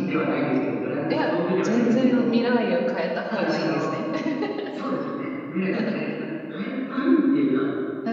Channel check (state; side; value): identical; both; correlation 1.00